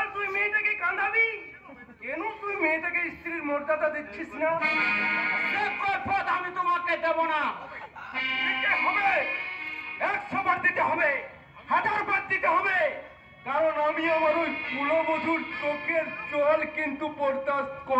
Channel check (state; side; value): identical; both; correlation 1.00